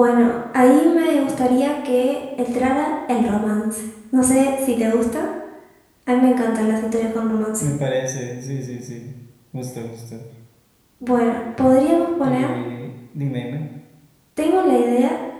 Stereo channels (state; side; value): identical; both; correlation 1.00